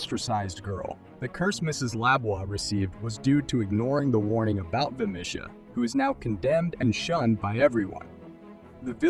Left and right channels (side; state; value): both; identical; correlation 1.00